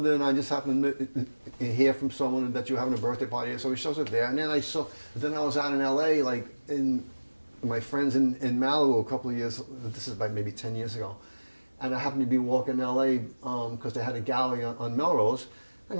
I just happened to hear from someone that you're having a birthday party." So he shows up there, and then I was out in L.A. like in my friends in Malibu a couple of years. This is about maybe 10 years ago. And I happened to be walking in L.A. Because they had a gallery on Melrose,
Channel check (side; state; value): both; inverted; correlation -1.00